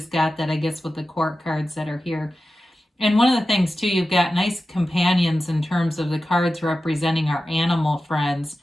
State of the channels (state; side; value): normal; both; correlation 0.93